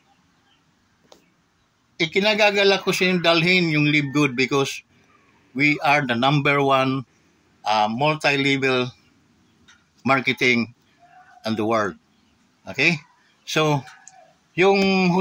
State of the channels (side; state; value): both; identical; correlation 1.00